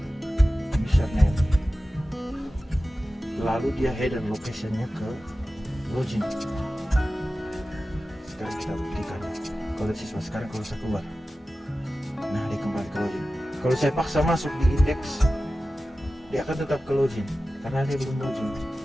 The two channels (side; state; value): both; normal; correlation 0.95